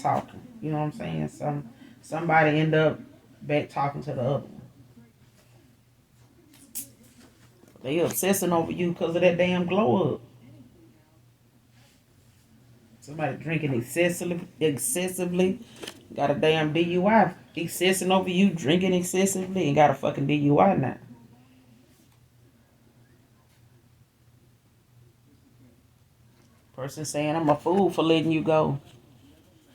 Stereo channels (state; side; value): identical; both; correlation 1.00